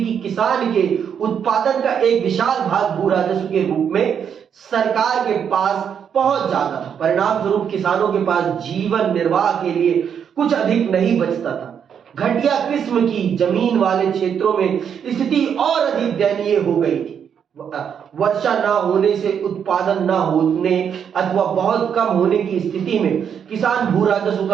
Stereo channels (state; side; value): quieter; left; 7.8 dB